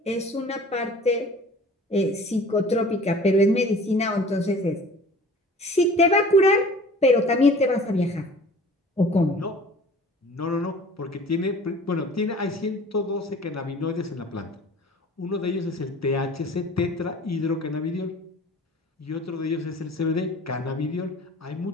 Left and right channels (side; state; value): both; normal; correlation 0.46